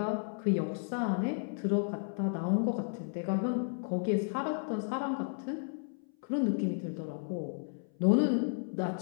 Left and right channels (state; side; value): silent; right; 56 dB below the other